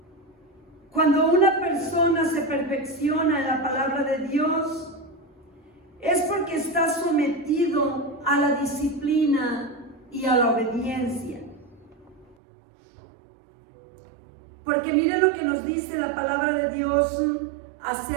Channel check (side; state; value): left; drops out; at 12.4 s